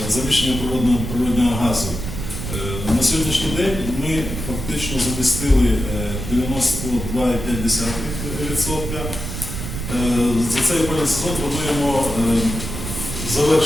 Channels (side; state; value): right; noise; rumble, 6 dB below the sound